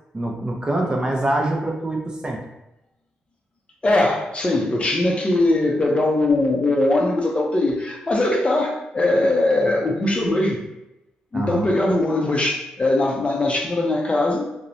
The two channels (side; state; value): both; normal; correlation 0.85